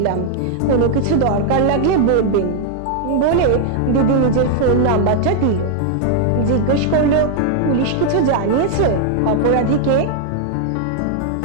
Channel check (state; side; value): different; both; correlation 0.00